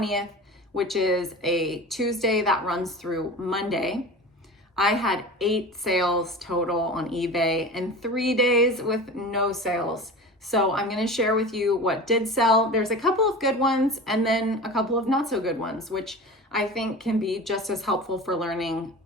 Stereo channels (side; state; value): both; normal; correlation 0.33